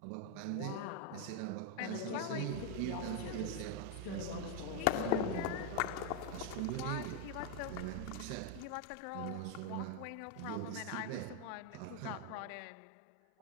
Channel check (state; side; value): different; both; correlation 0.01